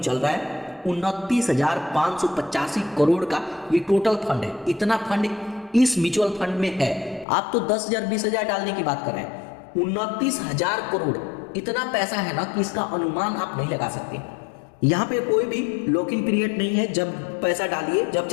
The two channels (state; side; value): drops out; right; at 7.2 s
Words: रहा है। 29,585 करोड़ का ये टोटल फंड है। इतना फंड इस म्यूचुअल फंड में है। आप तो 10,000 20,000 डालने की बात कर रहे हैं। 29,000 करोड़ इतना पैसा है ना कि इसका अनुमान आप नहीं लगा सकते। यहाँ पे कोई भी लॉकिंग पीरियड नहीं है, जब पैसा डालिए जब